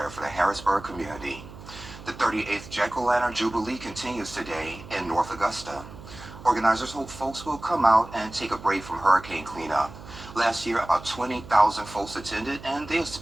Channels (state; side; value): noise; right; hum, 16 dB below the sound